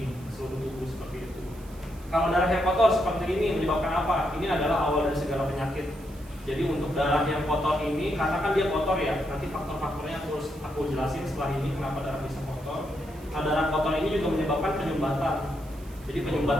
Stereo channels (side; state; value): right; noise; hiss, 24 dB below the sound